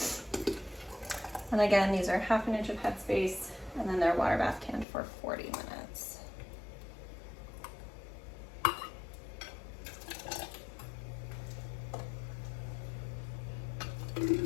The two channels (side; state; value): right; drops out; at 4.9 s